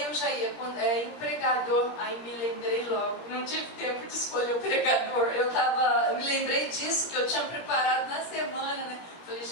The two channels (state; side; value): late; right; 17 ms